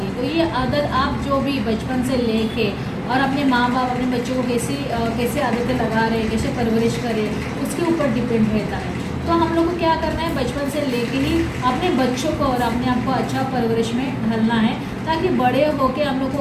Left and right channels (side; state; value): both; identical; correlation 1.00